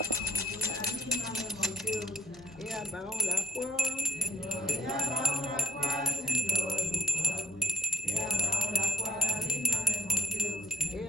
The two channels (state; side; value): normal; both; correlation 0.65